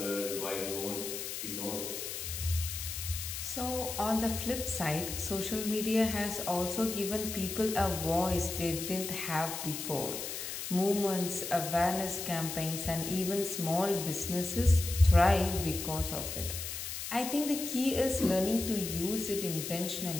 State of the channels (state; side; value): noise; left; hiss, 6 dB below the sound